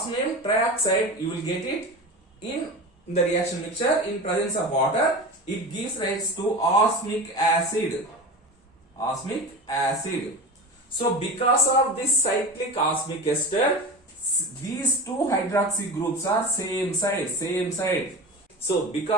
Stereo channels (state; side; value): normal; both; correlation 0.29